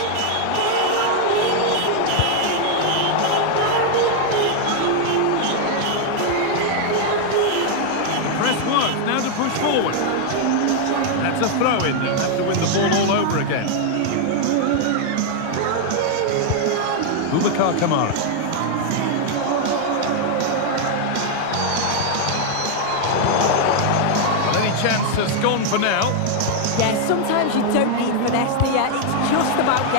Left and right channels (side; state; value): both; different; correlation 0.00